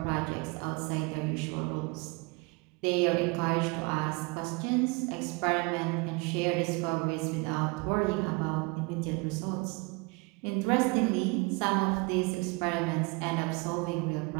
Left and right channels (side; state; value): left; quieter; 28.4 dB